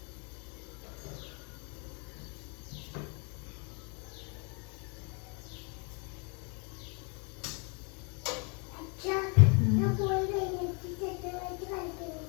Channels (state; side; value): quieter; right; 34.6 dB